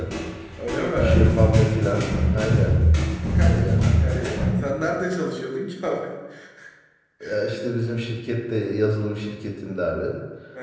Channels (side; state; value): both; identical; correlation 1.00